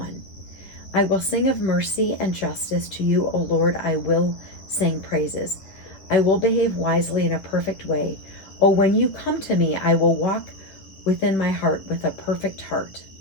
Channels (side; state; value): right; late; 10 ms